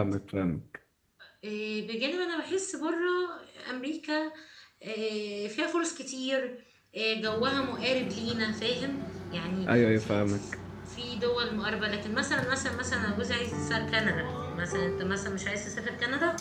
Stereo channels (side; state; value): both; identical; correlation 1.00